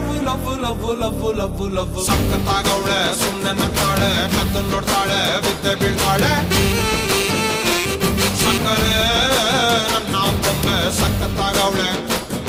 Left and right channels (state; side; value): identical; both; correlation 1.00